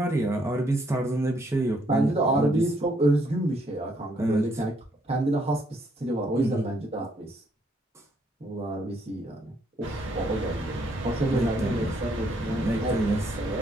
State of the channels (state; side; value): normal; both; correlation 0.70